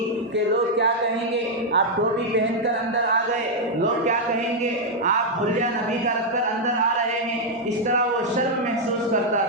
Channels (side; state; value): both; normal; correlation -0.02